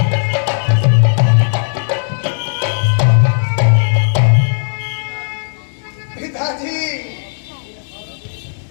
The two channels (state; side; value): silent; right; digital silence